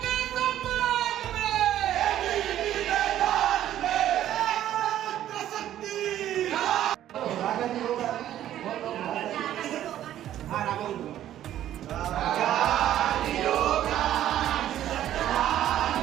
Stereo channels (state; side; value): quieter; left; 12.0 dB